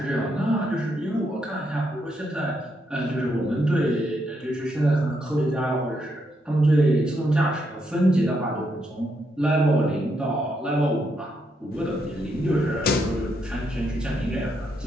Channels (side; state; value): both; normal; correlation 0.78